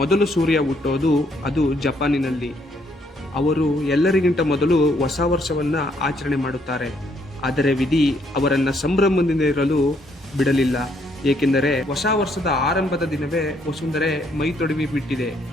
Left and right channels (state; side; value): normal; both; correlation 0.70